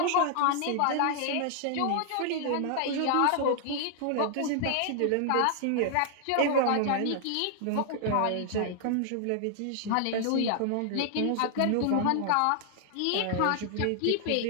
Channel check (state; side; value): different; both; correlation -0.01